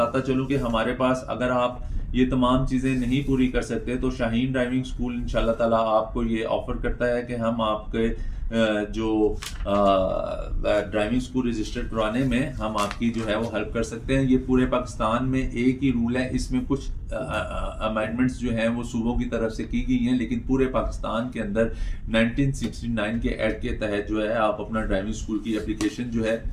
चलूँ कि हमारे पास अगर आप ये तमाम चीज़ें नहीं पूरी कर सकते तो शाहीन ड्राइविंग स्कूल इंशाल्लाह ताला आपको ये ऑफ़र करता है कि हम आपके जो ड्राइविंग स्कूल रजिस्टर करवाने में हम आपकी जो है वो हेल्प कर सकते हैं। ये पूरे पाकिस्तान में एक ही रूल है, इसमें कुछ अमेंडमेंट्स जो हैं वो सूबों की तरफ से की गई हैं, लेकिन पूरे पाकिस्तान के अंदर 1969 के एक्ट के तहत जो है आप अपना ड्राइविंग स्कूल की एप्लीकेशन जो है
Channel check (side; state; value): both; identical; correlation 1.00